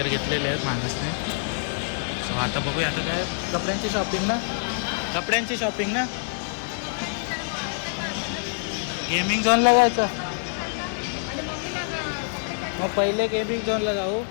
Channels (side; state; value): right; silent; digital silence